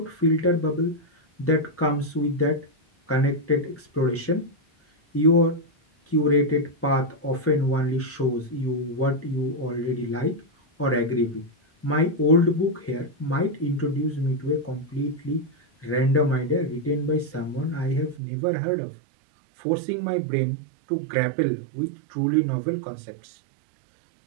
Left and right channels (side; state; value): left; drops out; at 18.2 s